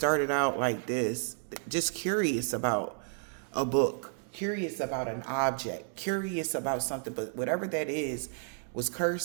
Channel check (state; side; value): silent; left; digital silence